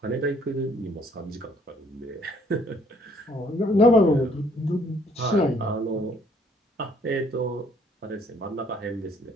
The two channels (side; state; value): both; normal; correlation 0.63